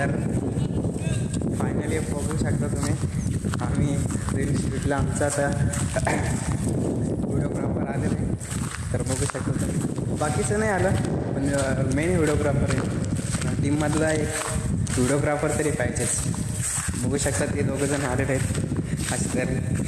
फायनली बघू शकता तुम्ही, आम्ही रील शूटला आमचा आता व्हिडिओग्राफर आलेला आहे. तर बघू शकता तुम्ही, बाकीचं नाही आलं पण मेन व्हिडिओग्राफर आहे टीममधला, एक व्हिडिओग्राफर तरी पाहिजेच. बघू शकता ते दोघंजण आलेले आहेत असे तरी.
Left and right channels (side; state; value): both; identical; correlation 1.00